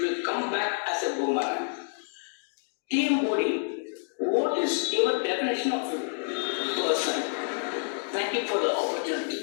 will come back as a boomerang. Team body, what is your definition of a person? Thank you for the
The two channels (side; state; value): right; silent; digital silence